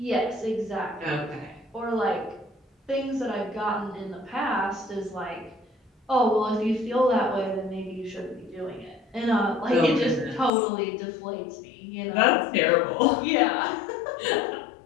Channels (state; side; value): drops out; right; at 10.5 s